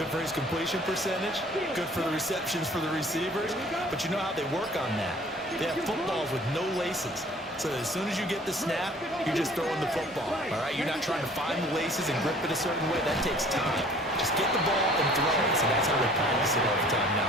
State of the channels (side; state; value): both; normal; correlation 0.52